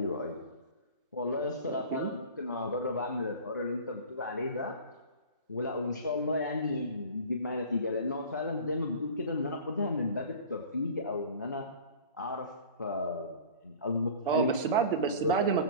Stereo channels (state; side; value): inverted; both; correlation -0.40